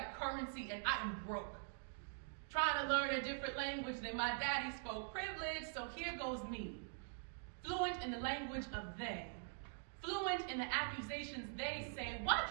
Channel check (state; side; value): silent; left; digital silence